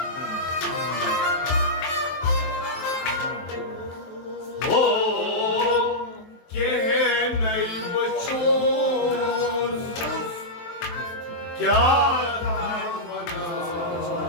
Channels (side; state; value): right; late; 23 ms